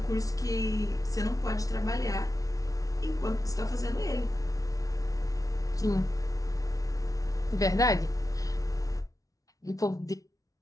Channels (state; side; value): late; right; 0.17 ms